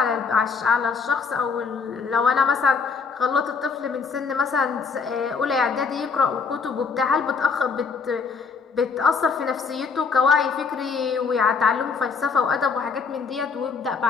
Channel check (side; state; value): right; quieter; 5.2 dB